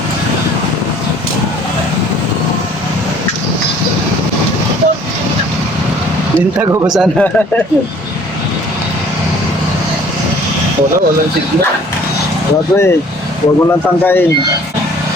Linta ko ba sana? Walang signal. Wala eh. Huwag mo lang tangkain.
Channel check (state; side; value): normal; both; correlation 0.54